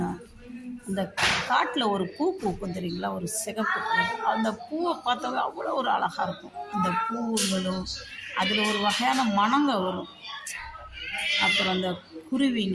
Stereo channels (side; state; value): both; identical; correlation 1.00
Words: அந்த காட்டில் ஒரு பூ பூக்கும் தெரியுங்களா, ஒரு சிகப்பு கலர். அந்த பூவை பார்த்தாவே அவ்வளோ ஒரு அழகாக இருக்கும். அந்த பூங்களும் அதில் ஒரு வகையான மணங்க வரும். அப்புறம் அந்த